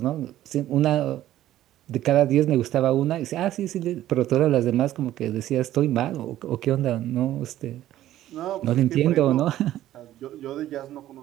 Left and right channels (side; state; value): left; quieter; 13.4 dB